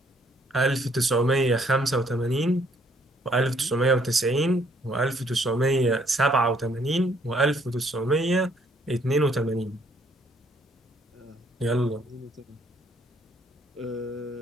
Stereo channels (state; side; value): normal; both; correlation 0.66